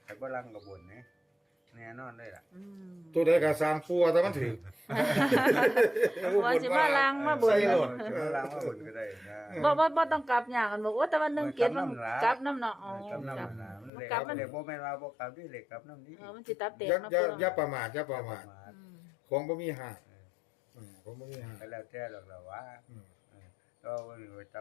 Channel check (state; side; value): drops out; right; at 13.9 s